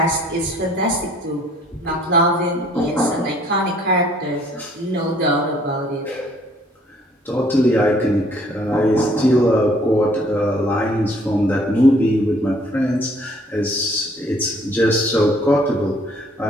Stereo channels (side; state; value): both; normal; correlation 0.60